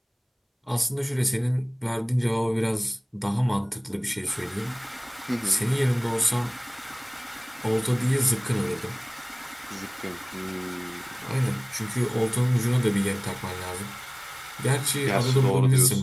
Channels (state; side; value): identical; both; correlation 1.00